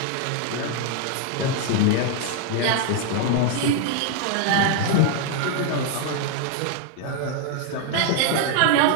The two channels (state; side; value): different; both; correlation 0.00